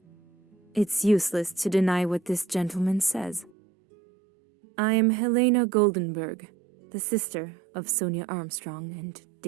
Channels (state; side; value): drops out; left; at 3.5 s